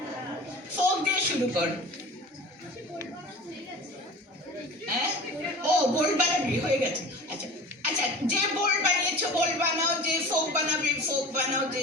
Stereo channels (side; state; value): both; normal; correlation 0.38